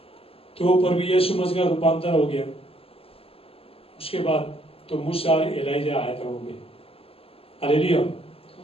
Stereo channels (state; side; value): late; right; 0.28 ms